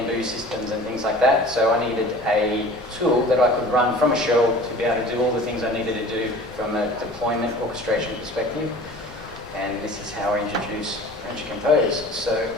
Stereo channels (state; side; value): normal; both; correlation 0.43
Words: systems and things like that. So I needed a tool that I could run from a shell to be able to do all the things I needed to do from a deployment orchestration perspective. And this is how I introduce Rancher Compose. So